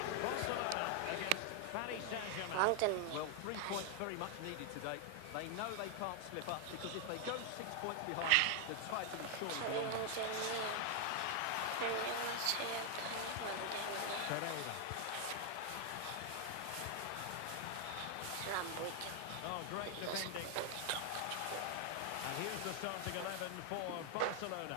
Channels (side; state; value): both; different; correlation 0.00